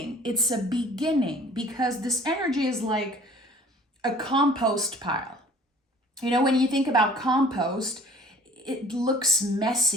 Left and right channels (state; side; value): normal; both; correlation 0.50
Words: It's a beginning, because this energy is like a compost pile. You know, when you think about compost, it looks